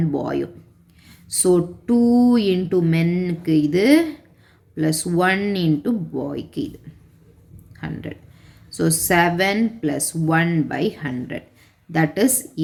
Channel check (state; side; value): identical; both; correlation 1.00